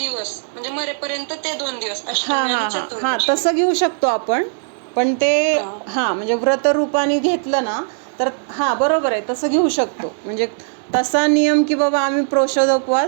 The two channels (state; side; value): silent; left; 64 dB below the other